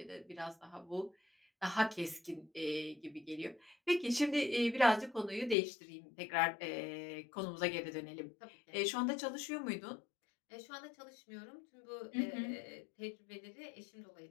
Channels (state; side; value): drops out; right; at 5.6 s